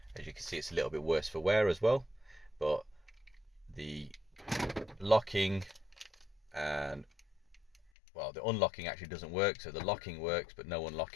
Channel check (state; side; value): drops out; right; at 7.9 s